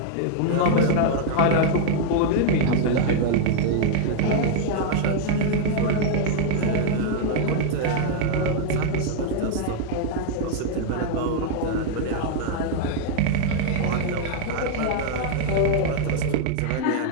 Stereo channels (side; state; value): both; different; correlation 0.00